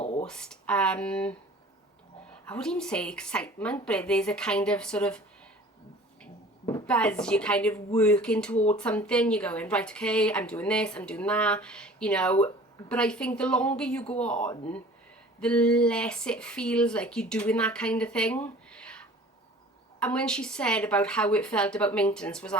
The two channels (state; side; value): normal; both; correlation 0.46